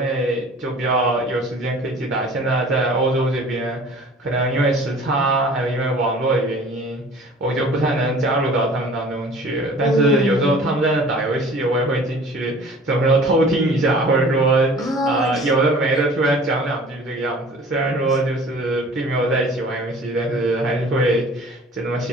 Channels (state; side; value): normal; both; correlation 0.47